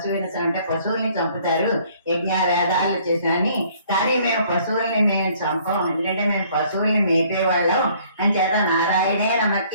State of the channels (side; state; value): both; inverted; correlation -0.59